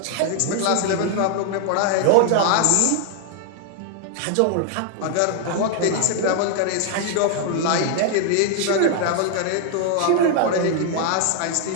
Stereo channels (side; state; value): both; different; correlation 0.00